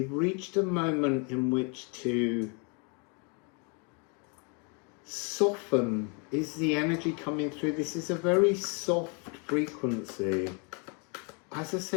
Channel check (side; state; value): right; quieter; 35.6 dB